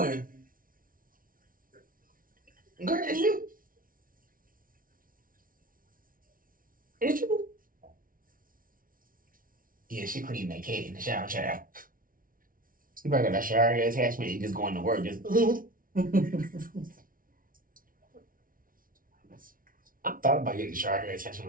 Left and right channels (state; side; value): late; left; 0.41 ms